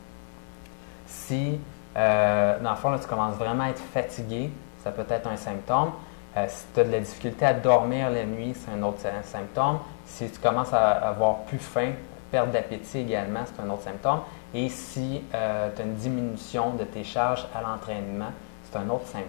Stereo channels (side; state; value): right; silent; digital silence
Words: Si, dans le fond, là, tu commences vraiment à être fatigué, ça peut être un symptôme. Si tu as de la difficulté à dormir la nuit, c'est un autre symptôme. Si tu commences à avoir plus faim, perte d'appétit également, c'est un autre symptôme. Et si tu as une diminution de tes charges à l'entraînement, c'est un autre